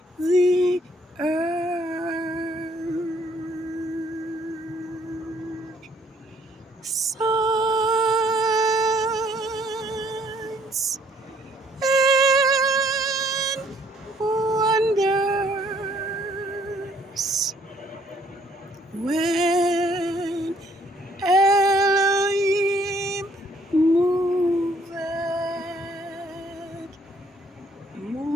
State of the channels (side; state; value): both; normal; correlation 0.64